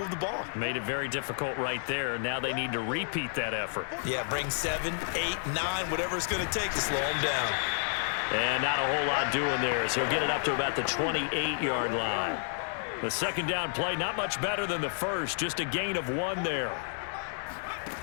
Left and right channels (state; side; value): silent; right; 55 dB below the other